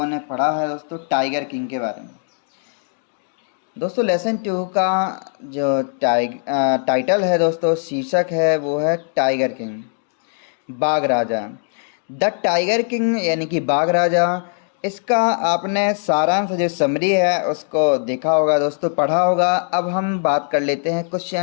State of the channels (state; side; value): silent; right; digital silence